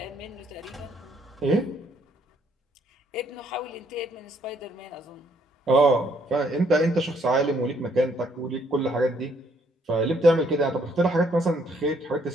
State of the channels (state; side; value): normal; both; correlation 0.68